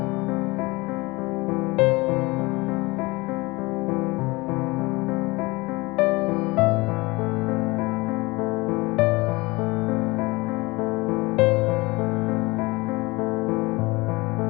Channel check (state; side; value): quieter; right; 23.3 dB